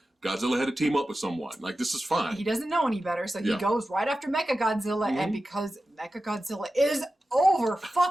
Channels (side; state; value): both; normal; correlation 0.93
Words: Godzilla had to team up with someone. Like, this is fine. He doesn't know any better, so he goes right after Mechagodzilla, and because Mechagodzilla is over